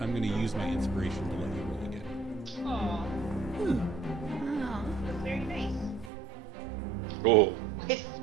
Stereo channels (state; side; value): drops out; left; at 6.1 s